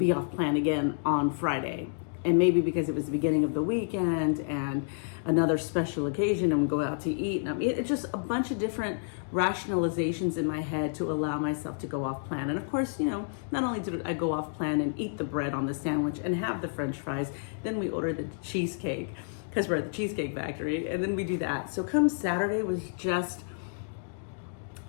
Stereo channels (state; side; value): silent; right; digital silence